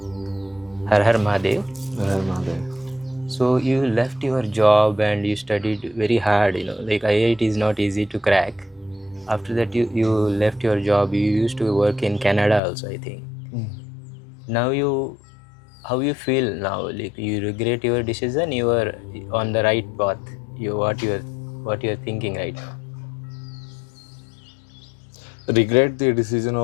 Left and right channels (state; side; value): drops out; right; at 12.6 s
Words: Har Mahadev. Har Mahadev. So you left your job and you studied very hard, like IIT is not easy to crack. After that you left your job. You used to work in Canada also, I think. Now how you feel now? Like you regret your decision? You are on the right path? What you're thinking right now? Regret the decision